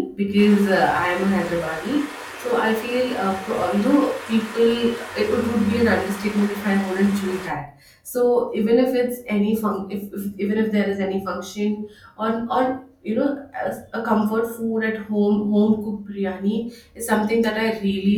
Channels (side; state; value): both; identical; correlation 1.00